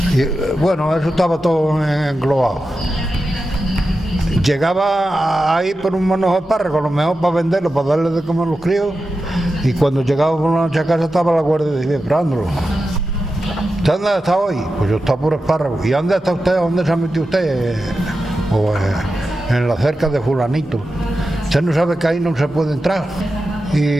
Y, bueno, eso estaba todo englobado. Llegaba ahí por un manojo de espárragos, a lo mejor para venderlo, para darle de comer a los críos, y cuando llegaba por la noche a casa estaba la Guardia Civil esperándolo. ¿Usted dónde está hoy? Pues yo estaba por espárragos. ¿Y dónde está usted? ¿Dónde se ha metido usted? En la cerca de fulanito. Usted no sabe que ahí no se puede entrar.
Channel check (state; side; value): normal; both; correlation 0.91